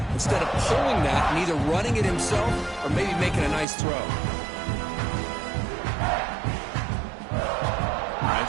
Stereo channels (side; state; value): left; drops out; at 3.7 s